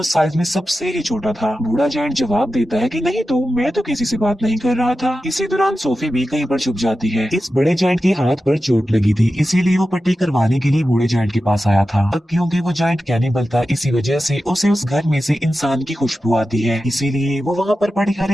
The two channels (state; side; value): normal; both; correlation 0.92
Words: साइज में सबसे ही छोटा था। बूढ़ा जायंट जवाब देता है कि नहीं तो मैं तो किसी से बात नहीं कर रहा था। इसी दौरान सोफी भी कहीं पर छुप जाती है। इस बड़े जायंट के हाथ पर चोट लगी थी, इसीलिए वो पट्टी करवाने के लिए बूढ़े जायंट के पास आया था। अब क्योंकि वो जायंट कैनिबल था, इसी वजह से उसे उस घर में से इंसान की खुशबू आती है, इसीलिए वो वहाँ पर पड़ी हर